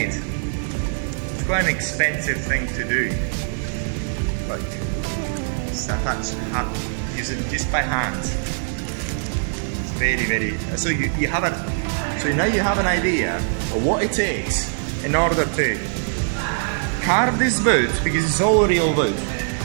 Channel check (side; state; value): left; silent; digital silence